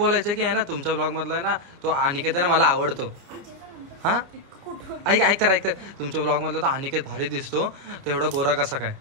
की आहे ना तुमच्या ब्लॉग मधला आहे ना तो अनिकेत आहे ना मला आवडतो हा ऐक तर तुमच्या ब्लॉग मधला तो अनिकेत भारी दिसतो तो एवढा गोरा कसा काय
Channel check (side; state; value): left; late; 29 ms